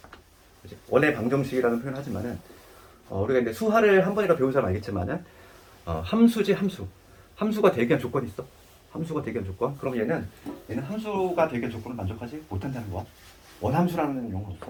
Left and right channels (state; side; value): identical; both; correlation 1.00